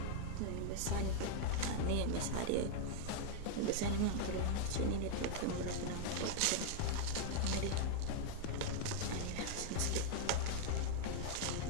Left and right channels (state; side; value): different; both; correlation -0.01